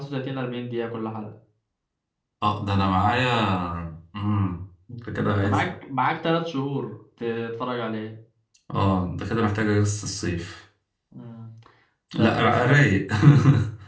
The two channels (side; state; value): both; identical; correlation 1.00